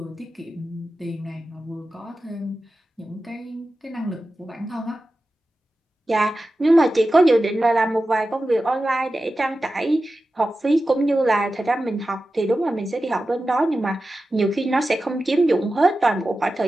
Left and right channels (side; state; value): both; normal; correlation 0.93